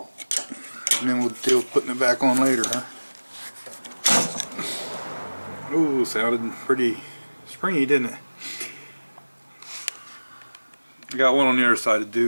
and then we'll deal with putting it back on later, huh? Ooh, sounded pretty springy, didn't it? I got one on the other side to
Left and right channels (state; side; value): inverted; both; correlation -1.00